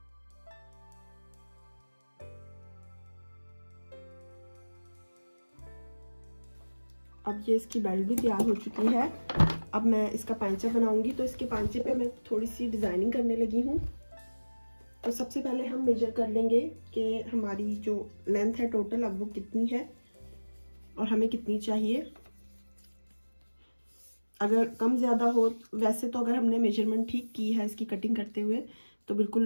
अब ये इसकी बेल्ट भी तैयार हो चुकी है। अब मैं इसका पांचा बनाऊंगी, तो इसके पांचे पे मैं थोड़ी सी डिजाइनिंग करने लगी हूँ। तो सबसे पहले हम मेजर कर लेंगे कि हमारी जो लेंथ है टोटल अब वो कितनी है और हमें कितनी चाहिए। अगर कम ज़्यादा हो, वैसे तो अगर हमने मेजरमेंट ठीक की है इसकी कटिंग करते हुए तो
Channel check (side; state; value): both; inverted; correlation -1.00